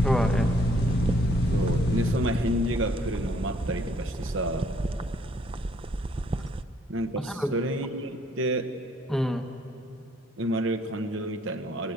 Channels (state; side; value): normal; both; correlation 0.66